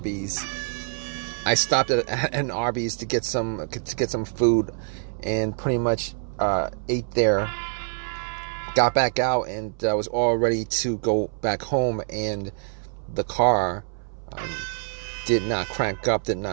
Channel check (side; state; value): left; silent; 61 dB below the other